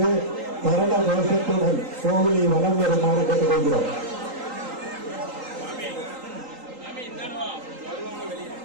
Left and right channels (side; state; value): left; late; 3.8 ms